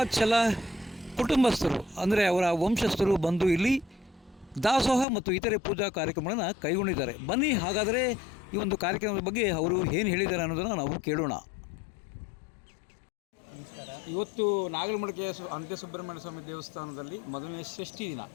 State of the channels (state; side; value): drops out; right; at 5.1 s